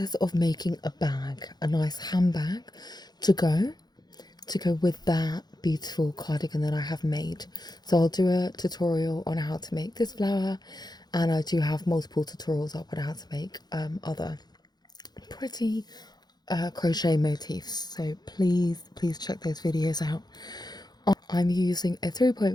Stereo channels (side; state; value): right; late; 0.20 ms